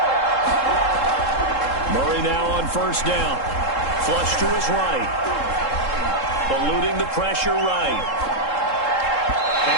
Murray now on first down. Flush to his right. Eluding the pressure right.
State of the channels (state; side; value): late; right; 3.7 ms